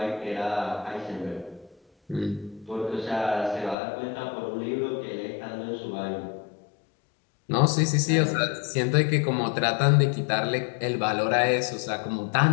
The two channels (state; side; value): drops out; right; at 3.8 s